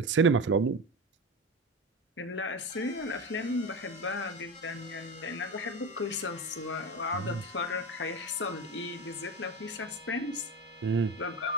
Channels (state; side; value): normal; both; correlation 0.23